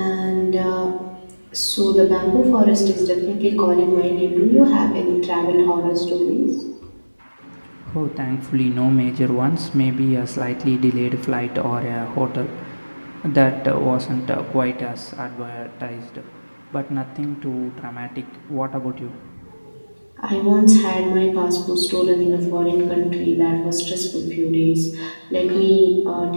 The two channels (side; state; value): both; inverted; correlation -1.00